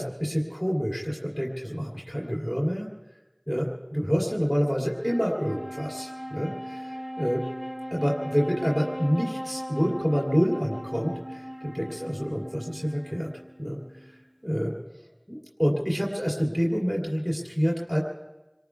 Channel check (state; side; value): identical; both; correlation 1.00